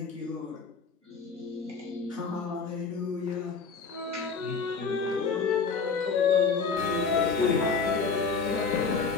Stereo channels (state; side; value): quieter; right; 5.1 dB